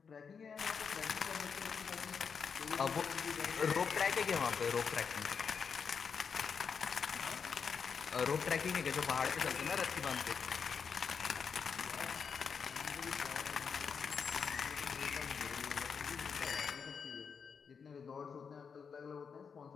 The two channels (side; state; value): right; quieter; 6.2 dB